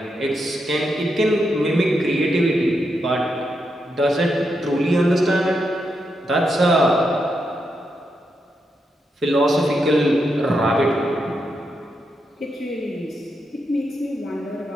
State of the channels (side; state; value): both; normal; correlation 0.83